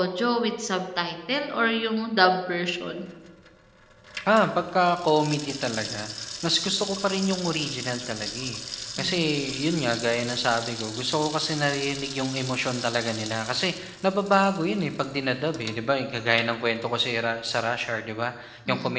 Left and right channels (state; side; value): identical; both; correlation 1.00